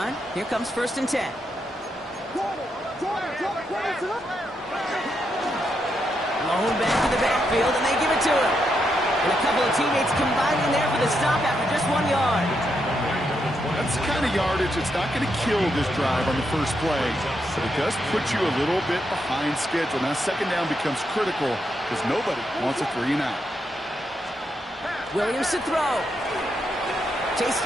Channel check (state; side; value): normal; both; correlation 0.81